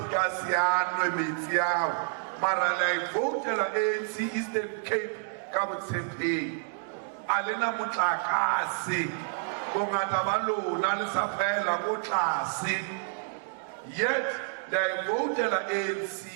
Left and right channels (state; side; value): silent; left; digital silence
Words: Gassian Remitiao, Maralai voted ANC Eastern Cape, Kabutsepe, Alina Mutlakasi, Bongatabalo, Nalisapela, Mutlasi. Yet they voted ANC,